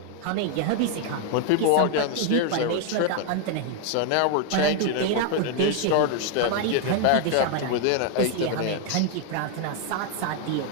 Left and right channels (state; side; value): different; both; correlation 0.00